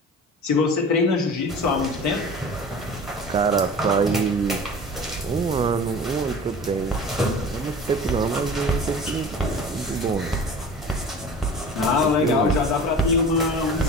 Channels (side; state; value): both; normal; correlation 0.39